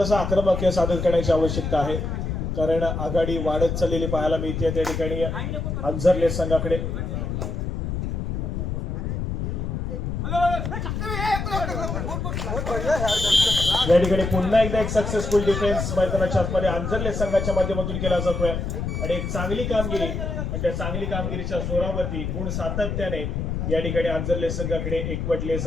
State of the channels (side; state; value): left; noise; rumble, 3 dB below the sound